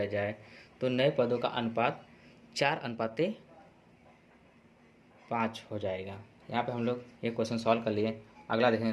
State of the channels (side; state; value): both; identical; correlation 1.00